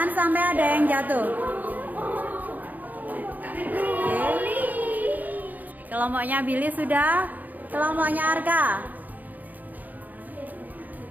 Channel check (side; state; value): left; late; 0.082 ms